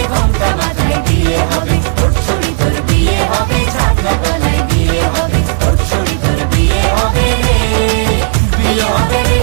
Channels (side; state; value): left; silent; digital silence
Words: ঘোমটা মাথায় বিয়ে হবে। ওর ছুরি তোর বিয়ে হবে, ছাগনা তলায় বিয়ে হবে। ওর ছুরি তোর বিয়ে হবে রে, বিয়ে হবে রে,